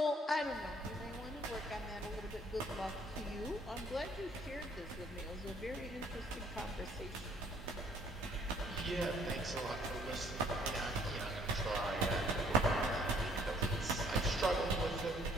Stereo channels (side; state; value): both; normal; correlation 0.61